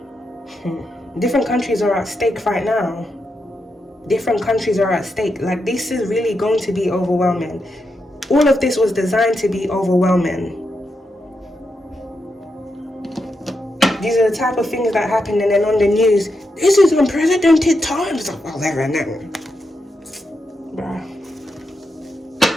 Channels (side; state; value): both; normal; correlation 0.85